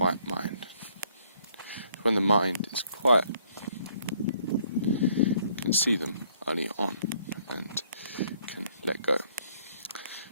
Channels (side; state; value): both; inverted; correlation -0.66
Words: mind. When the mind is quiet, you can see them early on and can let go.